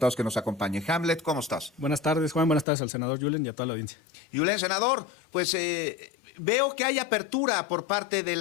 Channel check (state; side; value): drops out; right; at 2.7 s